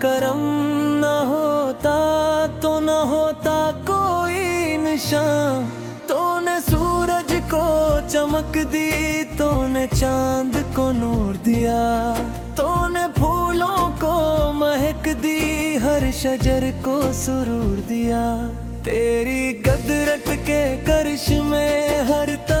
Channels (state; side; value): identical; both; correlation 1.00